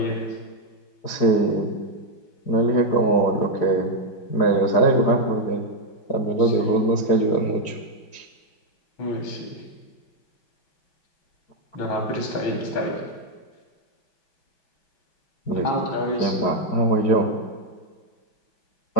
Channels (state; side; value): late; right; 4.8 ms